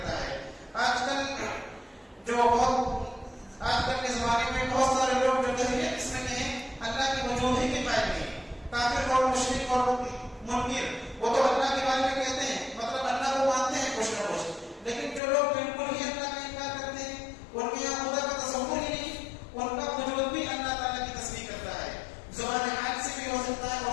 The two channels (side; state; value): right; drops out; at 15.2 s